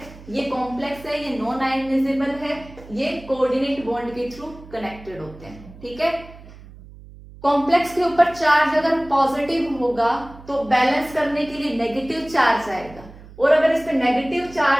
ये कॉम्प्लेक्स है, ये नॉन आयोनाइजेबल है, ये कोऑर्डिनेट बॉन्ड के थ्रू कनेक्टेड होते हैं, ठीक है। कॉम्प्लेक्स के ऊपर चार्ज अगर पॉजिटिव होगा तो बैलेंस करने के लिए नेगेटिव चार्ज आएगा, और अगर इस पे नेगेटिव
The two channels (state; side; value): noise; right; hum, 19 dB below the sound